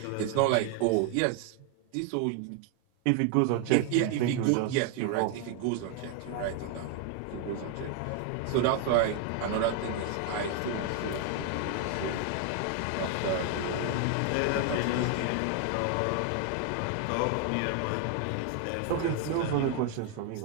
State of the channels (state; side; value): different; both; correlation 0.01